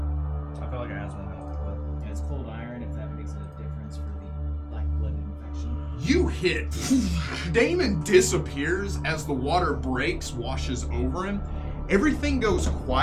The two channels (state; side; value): identical; both; correlation 1.00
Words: I feel like I asked one else, but And it's cold iron if that makes a difference for the black blood infection. You hit. Damon disappears as the water breaks, washes over him. Everything goes